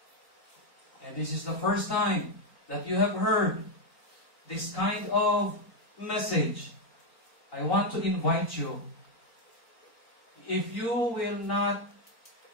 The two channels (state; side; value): late; right; 4.4 ms